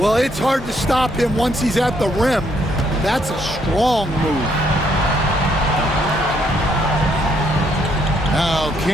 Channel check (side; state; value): both; normal; correlation 0.71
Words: it's hard to stop him once he's at the rim. That's a strong move. Now